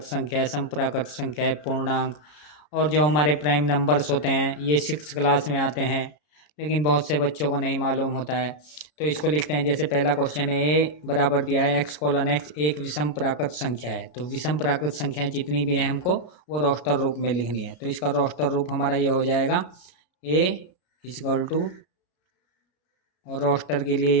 संख्या है, सम प्राकृत संख्या है, पूर्णांक और जो हमारे प्राइम नंबर्स होते हैं ये 6 क्लास में आते हैं, लेकिन बहुत से बच्चों को नहीं मालूम होता है। तो इसको लिखते हैं, जैसे पहला क्वेश्चन है, ए बराबर दिया है x:x एक विषम प्राकृत संख्या है। तो विषम प्राकृत संख्याएं जितनी भी हैं हमको वो रोस्टर रूप में लिखनी है। तो इसका रोस्टर रूप हमारा ये हो जाएगा a इक्वल टू, और रोस्टर के लिए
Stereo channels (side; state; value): right; late; 33 ms